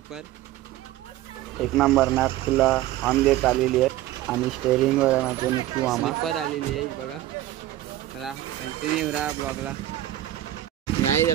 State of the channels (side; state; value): left; quieter; 14.3 dB